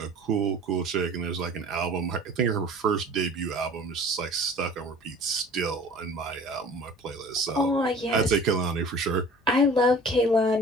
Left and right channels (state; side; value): normal; both; correlation 0.46